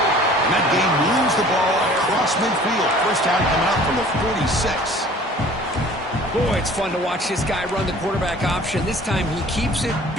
And that game moves the ball across midfield. First down coming out from the 46. Boy, it's fun to watch this guy run the quarterback option. This time he keeps it,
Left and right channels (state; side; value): normal; both; correlation 0.49